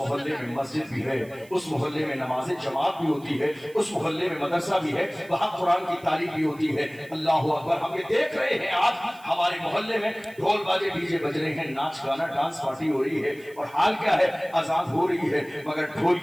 میں مسجد بھی ہے، اس محلے میں نماز جماعت بھی ہوتی ہے، اس محلے میں مدرسہ بھی ہے، وہاں قرآن کی تعلیم بھی ہوتی ہے۔ اللہ اکبر، ہم یہ دیکھ رہے ہیں آج ہمارے محلے میں ڈھول باجے ڈیجے بج رہے ہیں، ناچ گانا ڈانس پارٹی ہو رہی ہے، اور حال کیا ہے، اذان ہو رہی ہے مگر ڈھول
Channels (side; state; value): right; noise; hiss, 25 dB below the sound